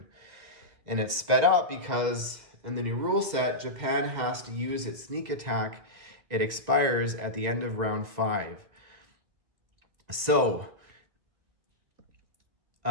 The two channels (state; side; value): late; left; 2.0 ms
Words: And it's sped up because in the new rule set, Japan has to use its sneak attack. It expires at the end of round 5. So